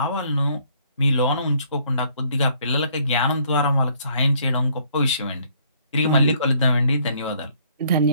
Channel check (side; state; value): both; inverted; correlation -0.64